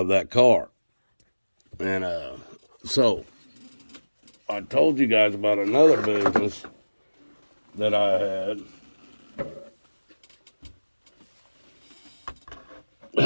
that car. And so I told you guys about another business that I had.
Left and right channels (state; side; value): inverted; both; correlation -1.00